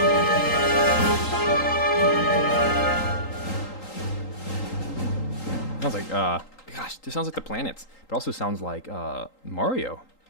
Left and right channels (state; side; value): late; right; 3.8 ms